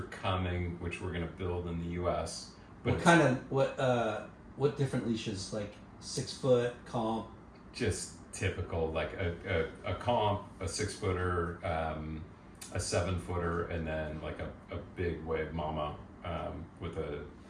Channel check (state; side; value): identical; both; correlation 1.00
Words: coming, which we're going to build in the U.S. But What kind of what different leashes? Like 6 foot comp. just typical, like a comp, a 6-footer, a 7-footer, and then like a big wave mama with a